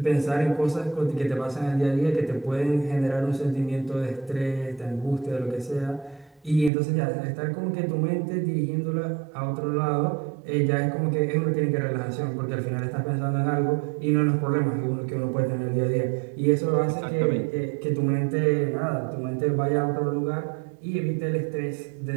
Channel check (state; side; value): drops out; left; at 6.7 s